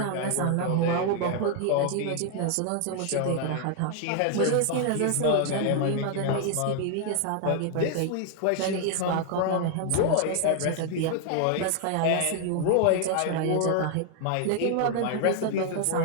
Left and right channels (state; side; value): different; both; correlation 0.00